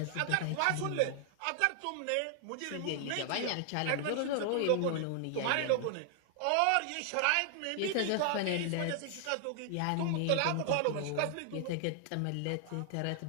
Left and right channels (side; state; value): both; different; correlation 0.00